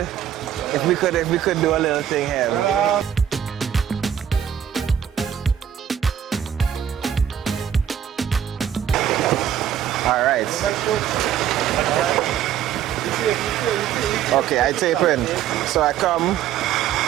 do a little thing here. All right. Okay, I tape in. So I come.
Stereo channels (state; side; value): quieter; left; 9.7 dB